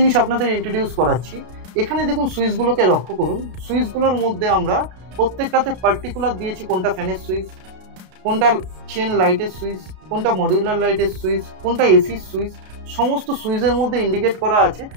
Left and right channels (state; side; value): late; left; 33 ms